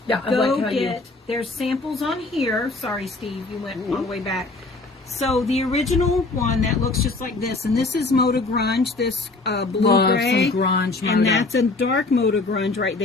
Yeah, I Go like how you- get. There's samples on here. Sorry, Steve, you went all the way back. So the original one that looks just like this, and this is Moda Grunge, this blue Love gray, some grunge and Moda. that's a dark Moda Grunge right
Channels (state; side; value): quieter; right; 3.4 dB